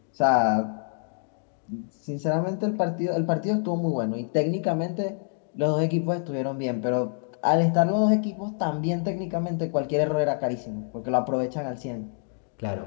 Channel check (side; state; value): right; silent; 60 dB below the other